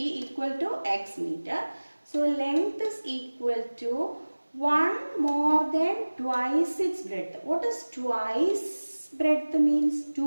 equal to x meter. So length is equal to 1 more than twice its breadth. What is twice? Breadth means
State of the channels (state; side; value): inverted; both; correlation -1.00